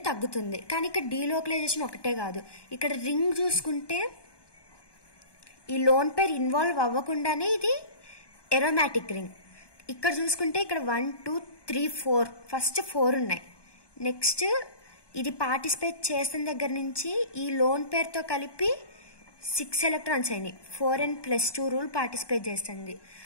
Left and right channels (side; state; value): right; late; 1.2 ms